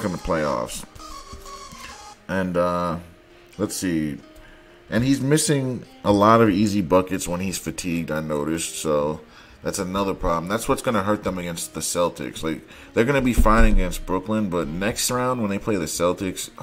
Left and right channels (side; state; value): both; identical; correlation 1.00